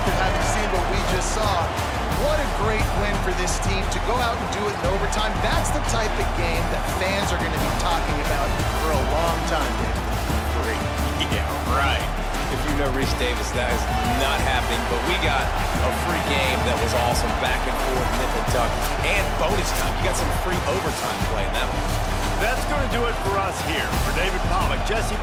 having seen what we just saw. What a great win for this team to go out and do it in overtime. That's the type of game that fans are going to be talking about for a long time, David. Great. Yeah, right. If you know Reese Davis, that is not happening, but we got a free game that was awesome, back and forth, nip and tuck, and bonus time. You got some free overtime play in that one. That's going to do it for us here. For David Pollack, Jesse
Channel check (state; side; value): identical; both; correlation 1.00